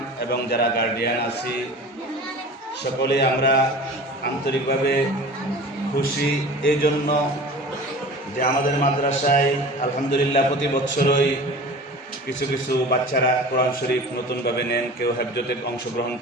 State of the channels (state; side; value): normal; both; correlation 0.38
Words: এবং যারা গার্ডিয়ান আছি, সকলে আমরা আন্তরিকভাবে খুশি এই জন্য যে আমাদের মাদ্রাসায় আলহামদুলিল্লাহ প্রতি বছরই কিছু কিছু বাচ্চারা কোরআন শরীফ নতুনভাবে নেন, কেউ হেফজতে অংশগ্রহণ